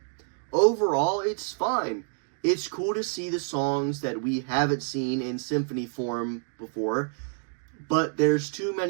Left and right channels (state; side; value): silent; left; 60 dB below the other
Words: Overall, it's fine. It's cool to see the songs that we haven't seen in symphony form before, but there's too